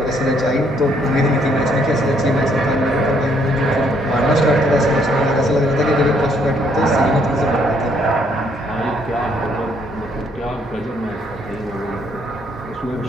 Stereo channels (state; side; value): normal; both; correlation 0.68